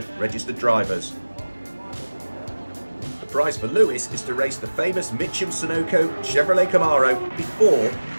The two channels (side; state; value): both; inverted; correlation -1.00